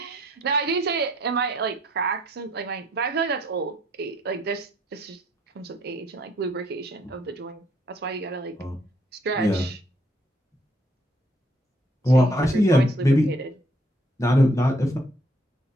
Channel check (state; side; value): normal; both; correlation 0.66